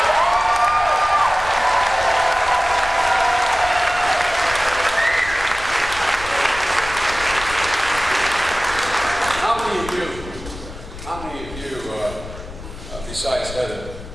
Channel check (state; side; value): noise; left; rumble, 13 dB below the sound